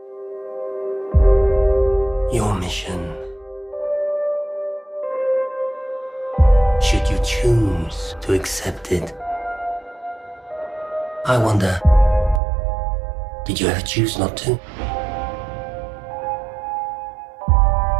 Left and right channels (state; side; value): drops out; left; at 12.4 s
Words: mission, should you choose to accept it. I wonder, did you ever choose not to?